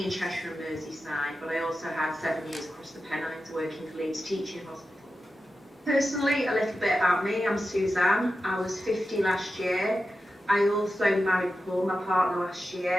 in Cheshire and Merseyside, but I also had 7 years across the Pennines working for Leeds Teaching Hospital. Personally, a little bit about me. I'm Suzanne. I was 50 last year. I also married Paul, my partner, last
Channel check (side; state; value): both; normal; correlation 0.91